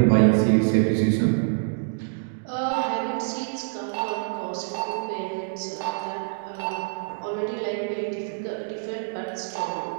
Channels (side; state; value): left; silent; digital silence